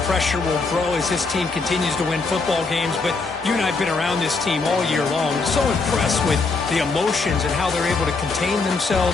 pressure will grow as this team continues to win football games, but you and I have been around this team all year long. So impressed with the emotions and how they're able to contain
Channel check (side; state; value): right; quieter; 4.1 dB